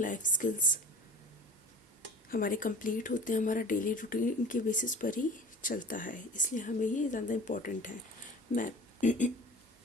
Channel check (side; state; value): both; normal; correlation 0.41